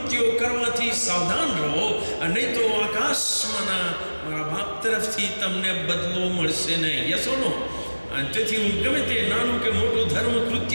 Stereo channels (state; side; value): inverted; both; correlation -1.00